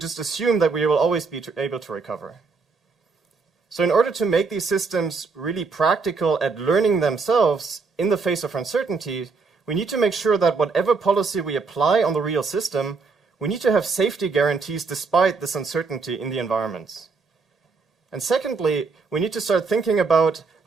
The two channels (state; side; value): quieter; left; 4.6 dB